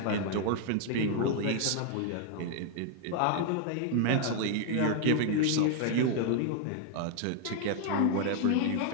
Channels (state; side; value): different; both; correlation 0.00